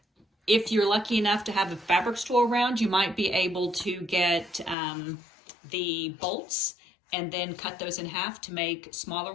If you're lucky enough to have a fabric store around, you might be able to get the bolts and then cut those in half to make smaller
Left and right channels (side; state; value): right; drops out; at 4.8 s